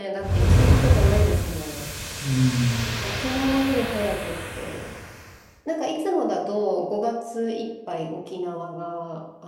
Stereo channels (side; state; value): both; identical; correlation 1.00